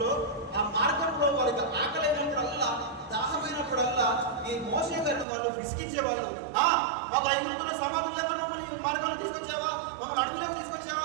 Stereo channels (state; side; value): drops out; left; at 5.2 s